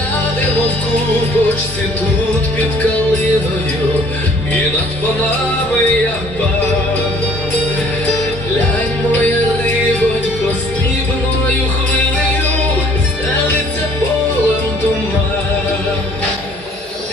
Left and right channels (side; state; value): both; normal; correlation 0.57